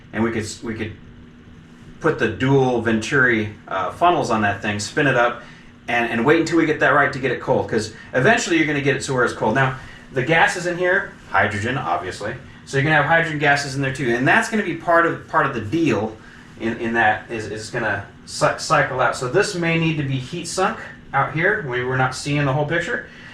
and we could put the dual Venturi funnels on that thing, spin it up, and wait until we get that right to get it cold, because eventually you're going to get it to where it's cold. Now, the gases in here, hydrogen, obviously, so you're going to have hydrogen gases in there too, and that's going to be part of the deal in that is going to cycle out. So this may need to be heat sunk out here. We're not seeing the whole picture.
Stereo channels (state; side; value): identical; both; correlation 1.00